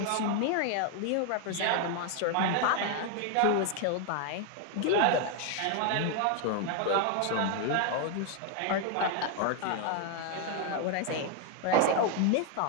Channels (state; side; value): different; both; correlation 0.01